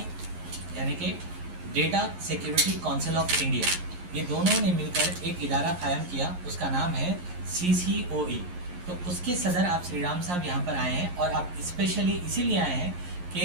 यानी कि data security council of India, ये दोनों ने मिलकर एक इदारा कायम किया, उसका नाम है CCOE। तो उसके सदर आप श्री राम साहब यहाँ पर आए हैं और आप स्पेशली इसीलिए आए हैं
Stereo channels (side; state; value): left; late; 11 ms